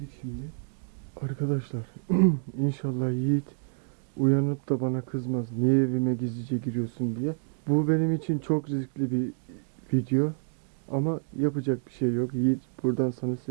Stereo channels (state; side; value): silent; left; digital silence